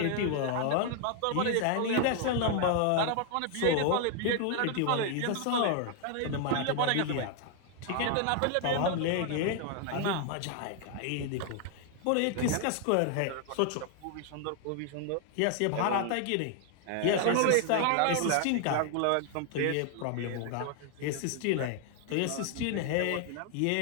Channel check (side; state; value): both; different; correlation 0.00